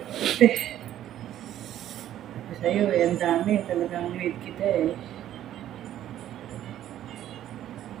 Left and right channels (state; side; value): quieter; left; 12.0 dB